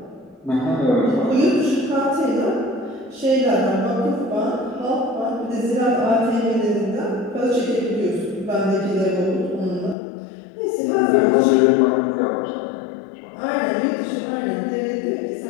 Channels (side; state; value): right; drops out; at 10.0 s